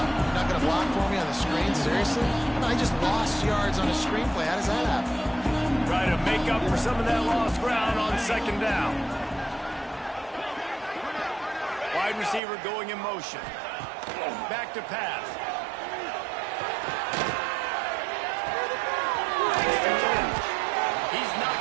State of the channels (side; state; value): left; drops out; at 12.4 s